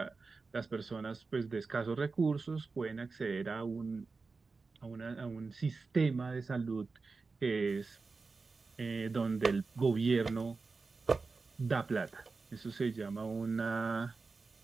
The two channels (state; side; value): quieter; left; 4.2 dB